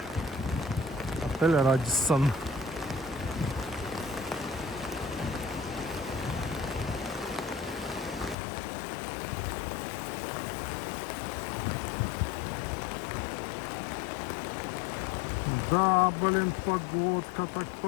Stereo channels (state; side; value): drops out; right; at 8.3 s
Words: Отель Радиссон. Да, блин, погодка, так